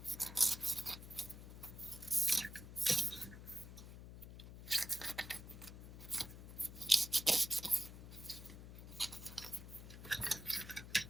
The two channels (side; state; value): left; noise; hum, 12 dB below the sound